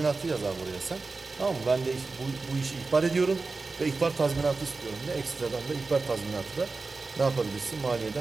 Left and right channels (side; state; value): left; quieter; 3.9 dB